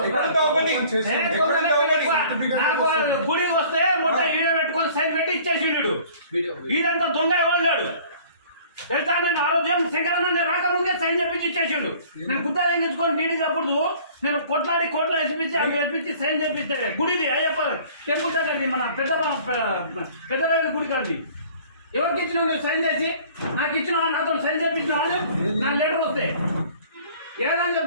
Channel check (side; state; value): both; inverted; correlation -0.51